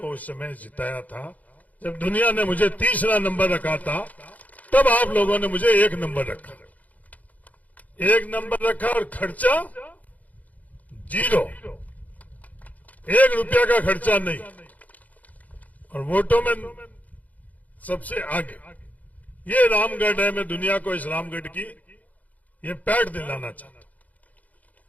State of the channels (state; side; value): late; right; 0.076 ms